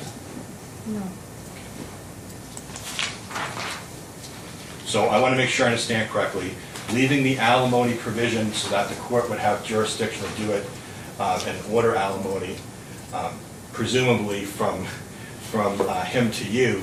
no. So I want to make sure I understand correctly. Leaving the alimony provision so that the court would have jurisdiction to do it and order alimony, presumably from him to you,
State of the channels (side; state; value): both; identical; correlation 1.00